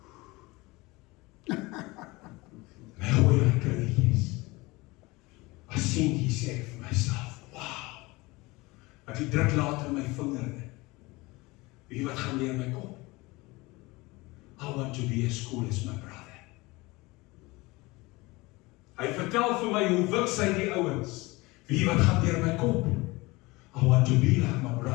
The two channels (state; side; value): quieter; right; 22.7 dB